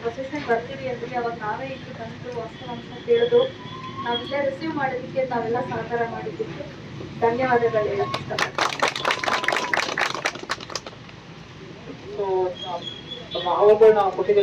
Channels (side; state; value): both; identical; correlation 1.00